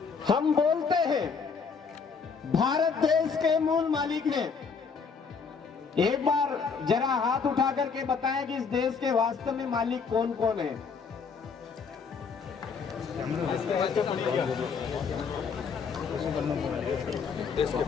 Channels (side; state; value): right; quieter; 5.6 dB